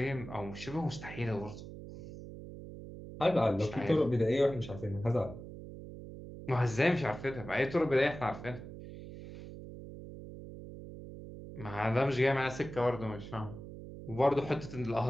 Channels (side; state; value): right; noise; hum, 12 dB below the sound